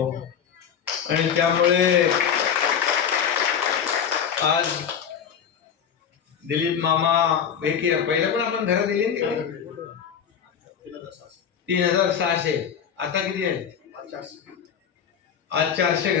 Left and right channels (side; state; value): right; quieter; 7.9 dB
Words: आणि त्यामुळे आज दिलीप मामा पहिलं पण आपण घरं दिली 3600, आता किती आहे? आज 400